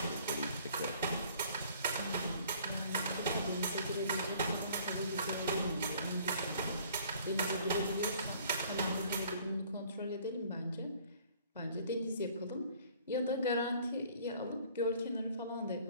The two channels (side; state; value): both; inverted; correlation -0.55